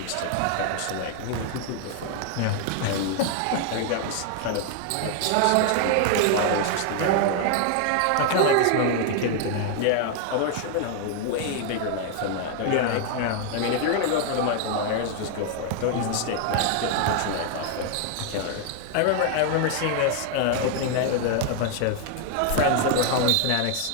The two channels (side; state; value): both; different; correlation 0.00